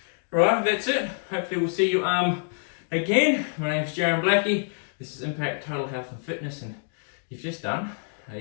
Right, that's it. Hopefully we'll see you again. My name's Jaron Blackie. This is Impact Total Health and Fitness, and you've just done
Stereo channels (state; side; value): silent; right; digital silence